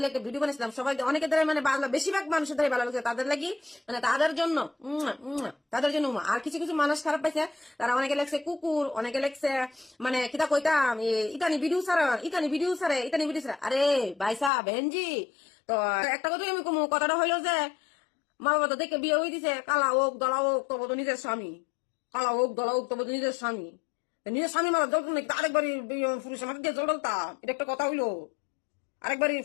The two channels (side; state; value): right; drops out; at 14.5 s